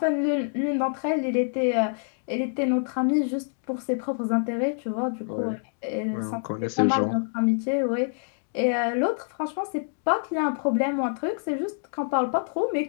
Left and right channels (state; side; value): silent; right; digital silence